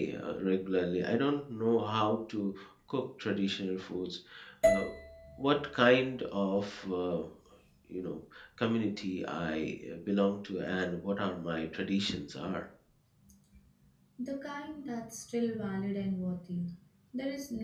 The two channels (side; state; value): both; identical; correlation 1.00